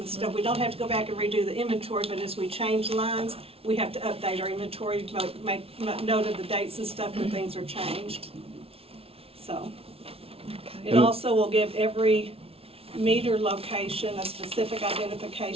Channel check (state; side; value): late; left; 0.28 ms